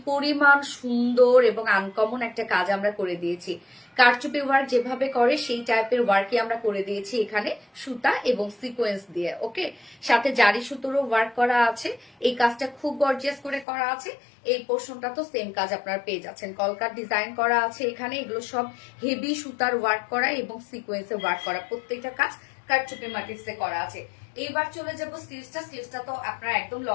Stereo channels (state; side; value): drops out; right; at 13.7 s